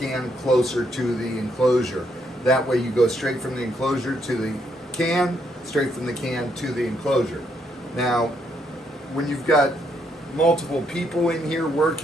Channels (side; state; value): both; normal; correlation 0.75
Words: closer to the enclosure. That way you go straight from the enclosure to the can, straight from the can to the enclosure. Now, when you've got multiple people in here